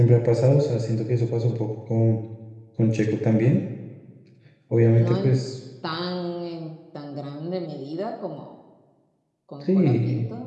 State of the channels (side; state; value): both; identical; correlation 1.00